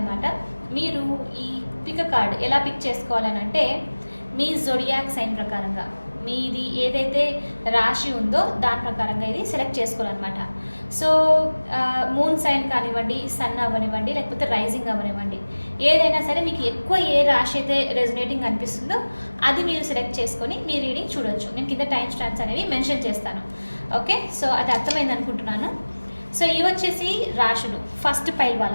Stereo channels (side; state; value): both; inverted; correlation -1.00